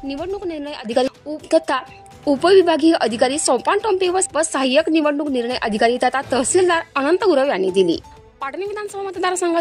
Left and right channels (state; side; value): identical; both; correlation 1.00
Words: निवडणूक निर्णय अधिकारी तथा उपविभागीय अधिकारी सोपान टोंपे व सहाय्यक निवडणूक निर्णय अधिकारी तथा तहसीलदार अनंत गुरव यांनी दिली। पाटण विधानसभा